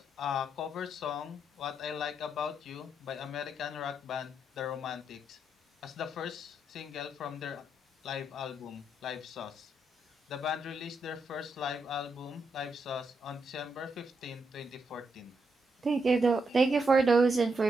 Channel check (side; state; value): both; normal; correlation 0.80